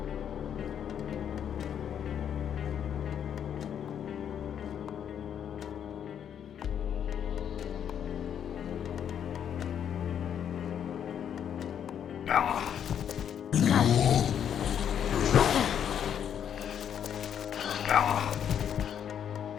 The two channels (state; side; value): quieter; right; 8.9 dB